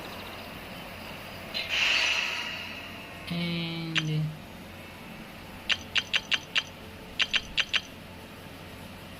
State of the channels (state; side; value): identical; both; correlation 1.00